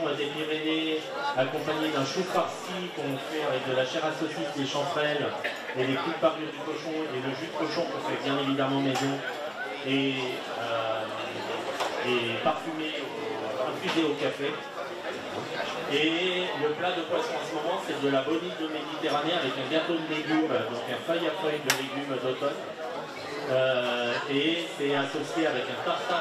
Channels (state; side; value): identical; both; correlation 1.00